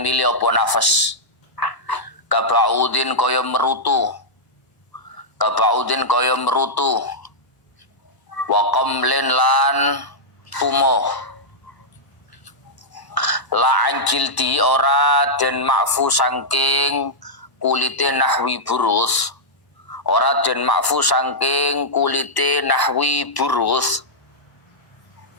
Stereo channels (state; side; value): late; right; 1.1 ms